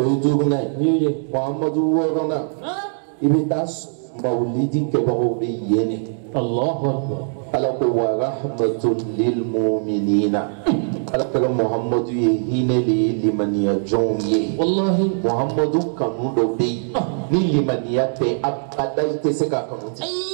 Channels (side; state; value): left; silent; digital silence